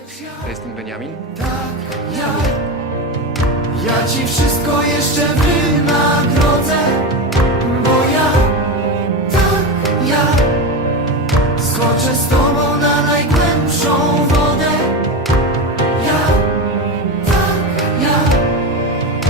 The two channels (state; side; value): normal; both; correlation 0.19